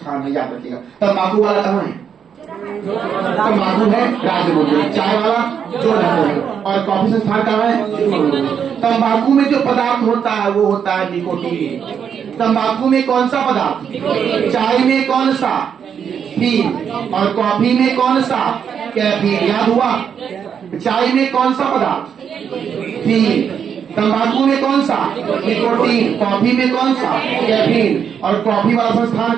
है, याद रखिएगा। तंबाकू वाला कहाँ है? तंबाकू है राजमुंद्री। चाय वाला जोरहट में। और कॉफी संस्थान कहाँ है? तंबाकू में जो पदार्थ होता है वो होता है निकोटीन। तंबाकू में कौन सा पदार्थ? चाय में कौन सा? फील। और कॉफी में कौन सा? कैफीन। याद हुआ? चाय में कौन सा पदार्थ? फील। तंबाकू में कौन सा? निकोटीन। कॉफी में कौन सा? कैफीन। और कॉफी वाला संस्थान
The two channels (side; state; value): left; quieter; 7.7 dB